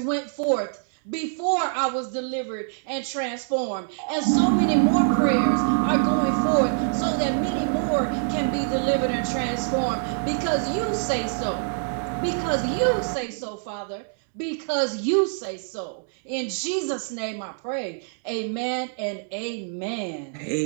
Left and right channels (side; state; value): left; silent; digital silence